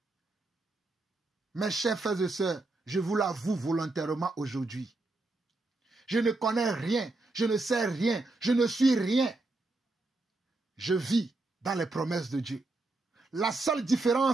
Mes chers frères et sœurs, je vous l'avoue volontairement aujourd'hui. Je ne connais rien, je ne sais rien, je ne suis rien. Je vis dans les promesses de Dieu. La seule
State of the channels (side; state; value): left; quieter; 3.0 dB